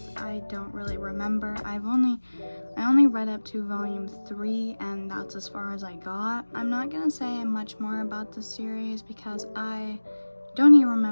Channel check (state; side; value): inverted; both; correlation -1.00